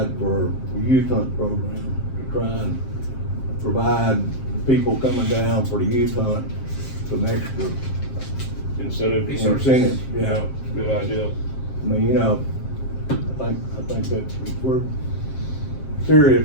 for the youth hunt program, to try and provide people coming down for the youth hunt some extra Incentive. incentives. Yeah, good idea. I mean, I think that if we're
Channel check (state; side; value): late; right; 7.5 ms